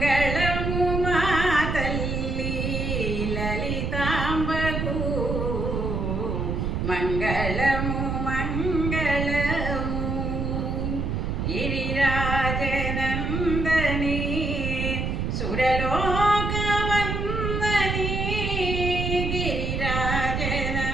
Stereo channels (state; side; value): noise; right; rumble, 1 dB below the sound